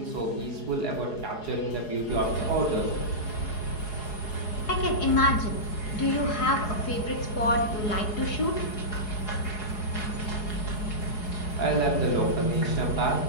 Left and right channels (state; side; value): late; right; 4.8 ms